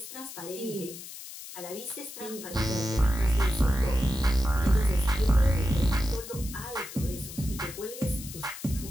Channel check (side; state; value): left; noise; hiss, 12 dB below the sound